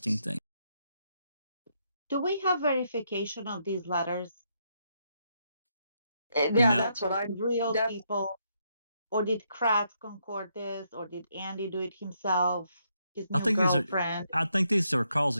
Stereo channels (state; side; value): inverted; both; correlation -0.76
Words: thing. Do we have verification of these letters? Yeah, No. that's what I. Real people? Or did Kratz concord this? Or did Andy do it himself? His new girlfriend? I think these are calls